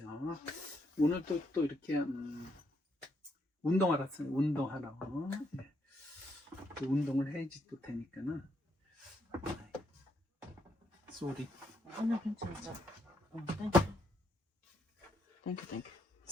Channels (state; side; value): normal; both; correlation 0.76